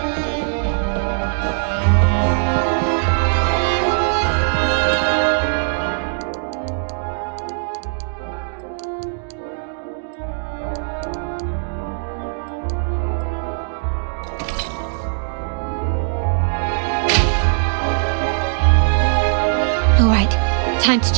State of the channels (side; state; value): left; silent; digital silence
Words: All right, time to